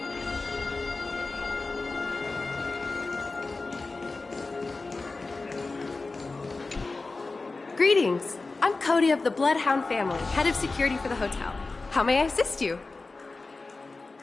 Greetings. I'm Cody of the Bloodhound family, head of security for the hotel. How may I assist you?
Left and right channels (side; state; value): right; quieter; 3.6 dB